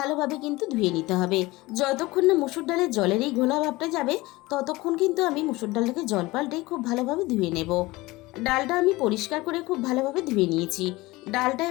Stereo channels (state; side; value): quieter; right; 20.6 dB